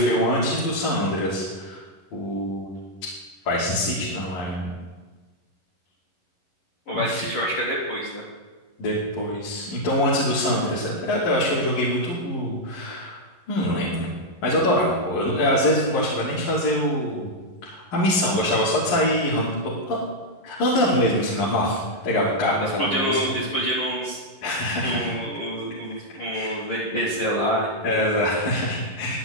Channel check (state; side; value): late; right; 11 ms